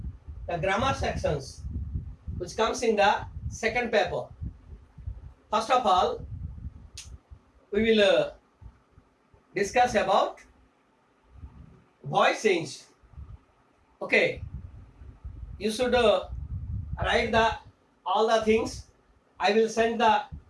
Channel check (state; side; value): identical; both; correlation 1.00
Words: the grammar sections which comes in the second paper. First of all, we will discuss about voice change. Okay, you should write the all the things. I will send the